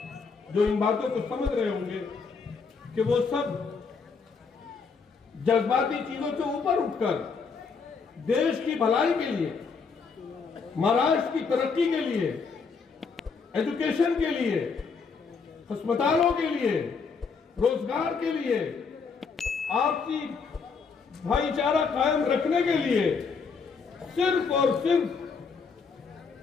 जो इन बातों को समझ रहे होंगे कि वो सब जज्बाती चीजों से ऊपर उठकर देश की भलाई के लिए, महाराष्ट्र की तरक्की के लिए, एजुकेशन के लिए, अस्पतालों के लिए, रोजगार के लिए, आपसी भाईचारा कायम रखने के लिए सिर्फ और सिर्फ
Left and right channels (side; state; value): right; quieter; 5.2 dB